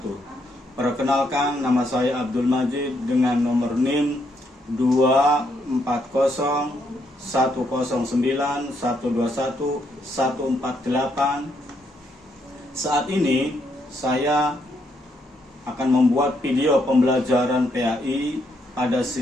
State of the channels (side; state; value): both; normal; correlation 0.75